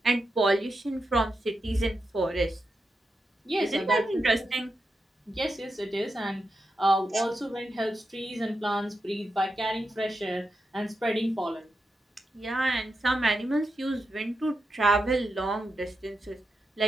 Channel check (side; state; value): both; normal; correlation 0.87